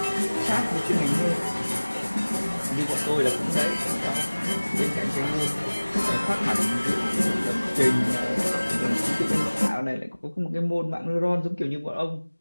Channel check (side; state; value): both; inverted; correlation -1.00